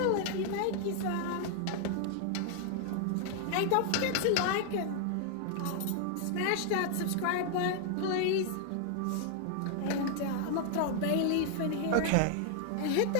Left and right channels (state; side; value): different; both; correlation 0.00